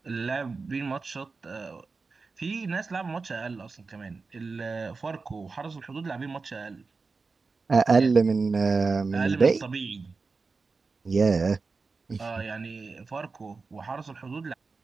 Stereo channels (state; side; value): quieter; left; 4.3 dB